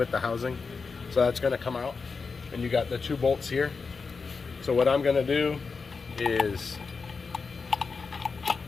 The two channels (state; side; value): quieter; right; 4.8 dB